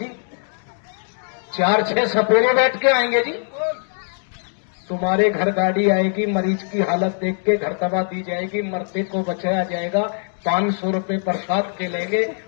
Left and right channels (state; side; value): silent; right; 57 dB below the other